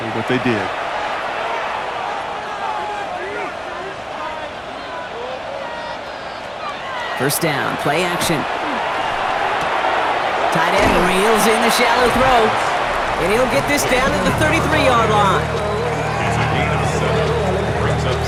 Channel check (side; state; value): both; identical; correlation 1.00